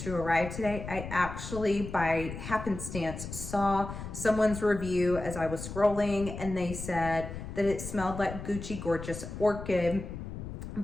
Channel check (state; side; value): noise; left; rumble, 9 dB below the sound